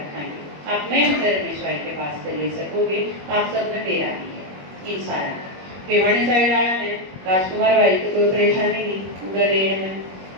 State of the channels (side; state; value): left; late; 21 ms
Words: आप मेन रमेश भाई के पास से ले सकोगे। आप सब ने तेरा ही है इन सारा। भिवानी साइड आया है राजकुमार भाई तो कोई परेशानी नहीं, उधर लेने में